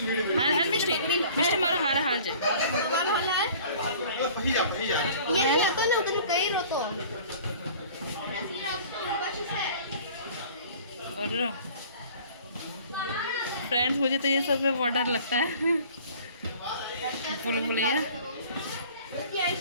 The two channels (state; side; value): inverted; both; correlation -0.48